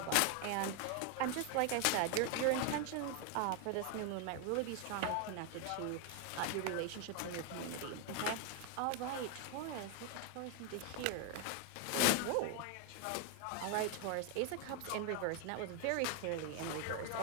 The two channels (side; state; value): both; different; correlation 0.00